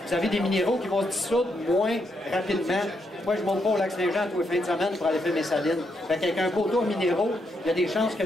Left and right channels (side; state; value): both; normal; correlation 0.79